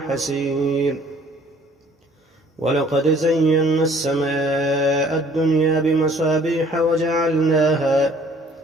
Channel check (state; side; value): normal; both; correlation 0.57